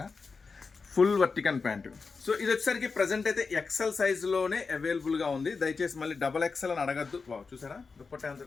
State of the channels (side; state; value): right; quieter; 4.7 dB